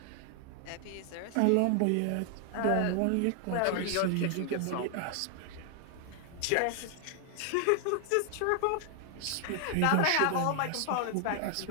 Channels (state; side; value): different; both; correlation 0.00